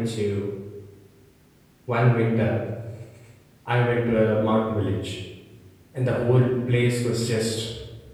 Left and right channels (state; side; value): identical; both; correlation 1.00